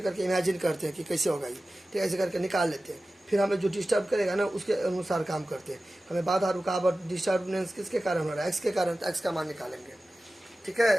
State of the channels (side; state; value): both; normal; correlation 0.95